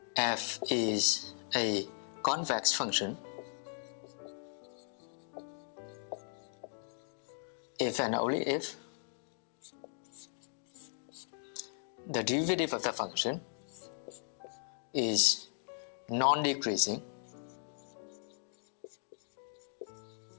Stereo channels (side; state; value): right; silent; digital silence